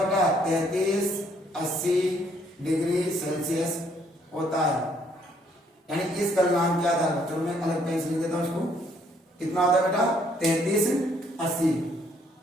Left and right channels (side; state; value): both; normal; correlation 0.67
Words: बेटा, 3380 डिग्री सेल्सियस होता है। यानी इस गलनांक के आधार पर, चलो मैं अलग पेन से लिख देता हूं इसको, कितना होता है बेटा 3380